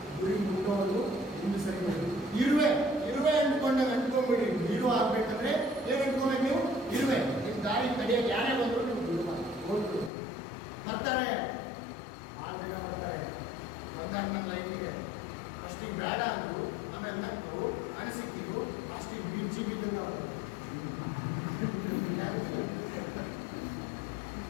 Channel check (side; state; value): right; drops out; at 10.1 s